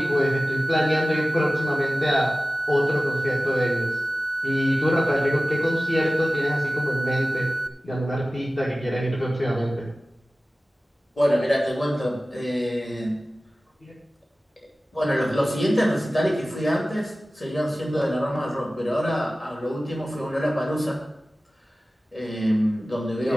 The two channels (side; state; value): both; normal; correlation 0.96